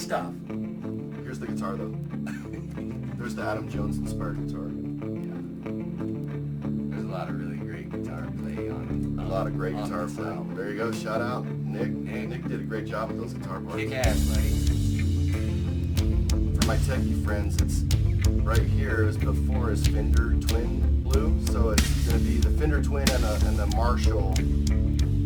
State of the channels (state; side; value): identical; both; correlation 1.00